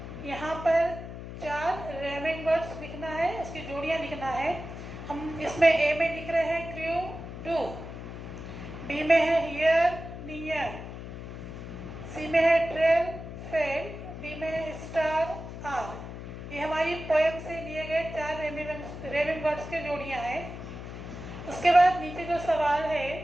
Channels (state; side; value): noise; left; hum, 10 dB below the sound